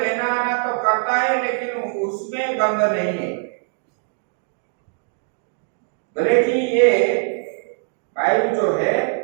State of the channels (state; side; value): silent; left; 64 dB below the other